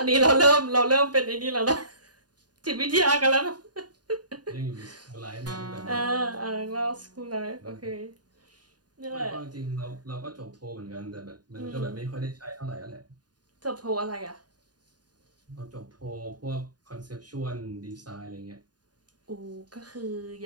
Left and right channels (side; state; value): left; late; 0.69 ms